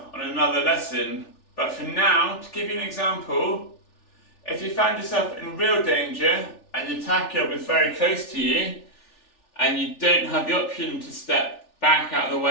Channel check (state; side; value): late; right; 3.4 ms